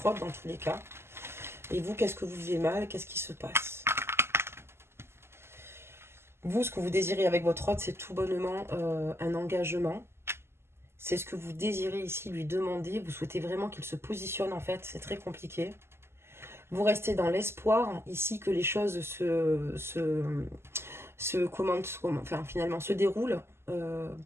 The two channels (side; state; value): left; late; 0.12 ms